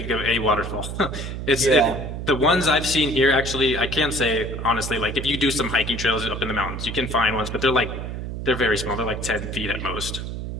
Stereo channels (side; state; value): right; noise; hum, 6 dB below the sound